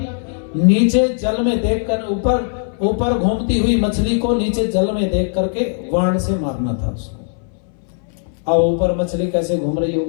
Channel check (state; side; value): silent; right; 62 dB below the other